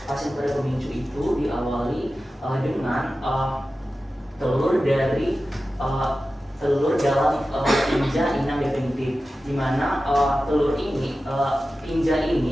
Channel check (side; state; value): both; normal; correlation 0.94